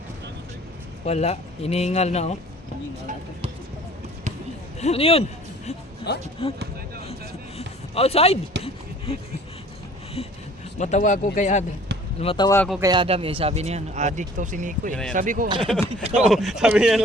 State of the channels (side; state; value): both; normal; correlation 0.51